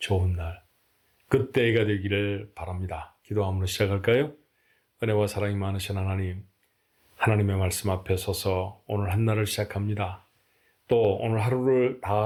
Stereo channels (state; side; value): identical; both; correlation 1.00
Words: 날, 그때가 되기를 바랍니다. 기도함으로 시작할까요? 은혜와 사랑이 많으신 하나님, 하나님의 말씀 앞에 서서 오늘 한 날을 시작합니다. 또 오늘 하루를